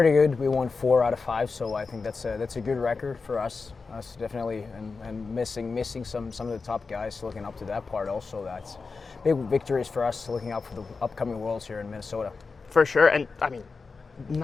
good. We won 4 out of 5, so I think that's a good record for us. Us definitely, and missing some of the top guys, looking up to that part also. That's big victories for us, looking out for the upcoming Worlds here in Minnesota. For sure, and I mean,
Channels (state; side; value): quieter; right; 4.5 dB